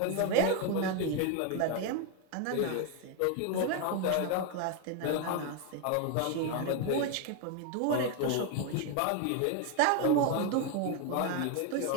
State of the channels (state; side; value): different; both; correlation 0.01